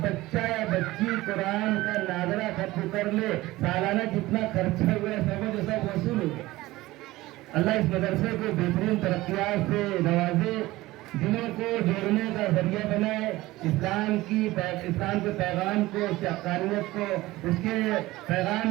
بچہ یا بچی قرآن کا ناظرہ ختم کر لے، سالانہ جتنا خرچہ ہوا ہے سمجھ سب وصول ہو گیا۔ اللہ اس مدرسے کو بہترین ترقیات سے نوازے، دلوں کو جوڑنے کا ذریعہ بنائے، اسلام کے پیغام کو، اس کی حقانیت کو، اس کے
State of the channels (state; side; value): quieter; left; 18.3 dB